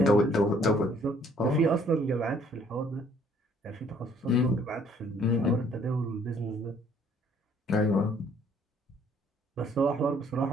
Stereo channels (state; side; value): normal; both; correlation 0.62